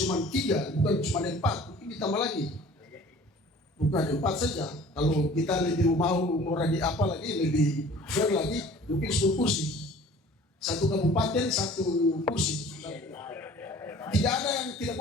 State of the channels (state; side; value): normal; both; correlation 0.48